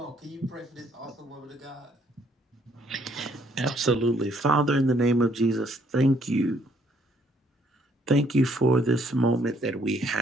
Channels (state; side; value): normal; both; correlation 0.66